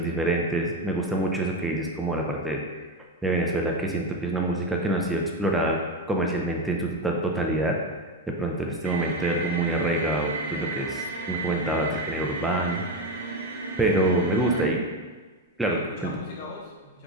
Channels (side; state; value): both; normal; correlation 0.13